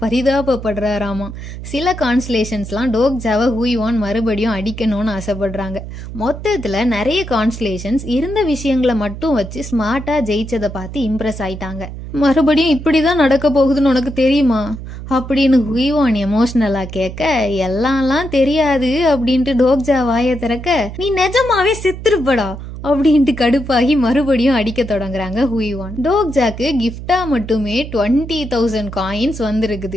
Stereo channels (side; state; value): right; noise; hum, 10 dB below the sound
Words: பரிதாபப்படுறாராமா. சில கான்ஸ்லேஷன்ஸ்லாம் டோக்ஜாவை ஹுய்வான் மறுபடியும் அடிக்கணும்னு ஆசைப்படுறாங்க. மொத்தத்துல நிறைய கான்ஸ்லேஷன்ஸ் இருந்த விஷயங்களை மட்டும் வச்சு ஸ்மார்ட்டா ஜெயிச்சதை பார்த்து இம்ப்ரெஸ் ஆயிட்டாங்க. மறுபடியும் இப்படிதான் நடக்க போகுதுன்னு உனக்கு தெரியுமா அப்படின்னு ஹுய்வான் எமோஷனலா கேட்க, எல்லாம்லாம் தெரியாது அப்படின்ட்டு டோக்ஜா வாயை திறக்க, நீ நிஜமாவே செத்துருப்படா அப்படின்ட்டு கடுப்பாகி மறுபடியும் அடிக்க தொடங்குறாங்க ஹுய்வான். டோக்ஜாக்கு கிஃப்டா மட்டுமே 20,000 காயின்ஸ்